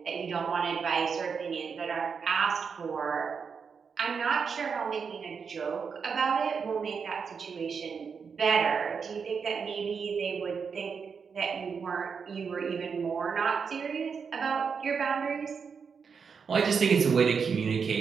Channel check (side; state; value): left; quieter; 6.0 dB